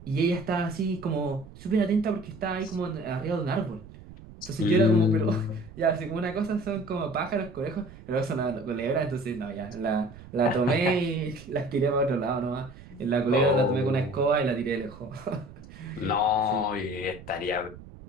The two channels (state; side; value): noise; right; rumble, 18 dB below the sound